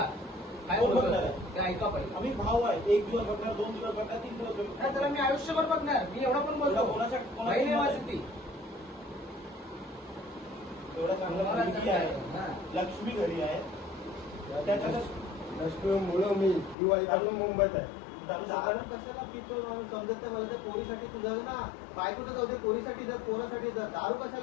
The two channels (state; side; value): drops out; right; at 16.8 s